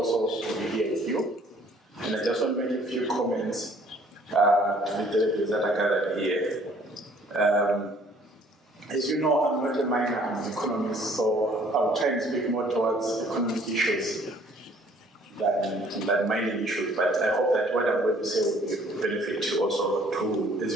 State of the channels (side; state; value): both; normal; correlation 0.58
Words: to be here with you. And I just want to make a few comments to the delegates that are gathered here. As you know, I'm not a miner, I'm an economist, so I'll try and speak more towards economic issues than mining issues. But I hope that what I'm going to say will be of benefit also to as